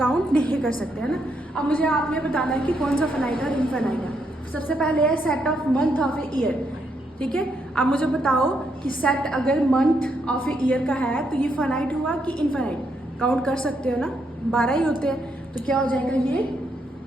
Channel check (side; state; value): both; normal; correlation 0.77